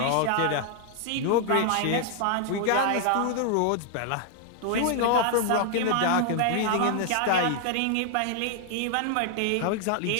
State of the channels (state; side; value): different; both; correlation 0.00